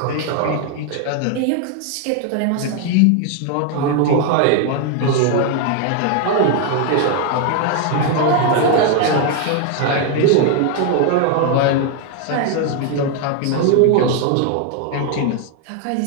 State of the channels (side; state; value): both; different; correlation 0.01